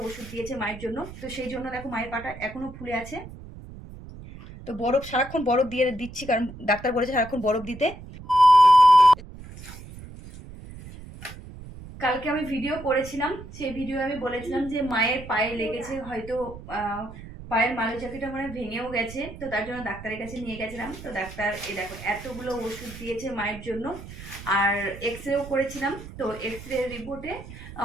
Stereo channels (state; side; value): noise; right; rumble, 14 dB below the sound